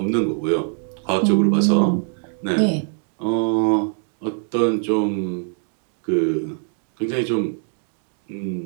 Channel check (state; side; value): silent; left; 61 dB below the other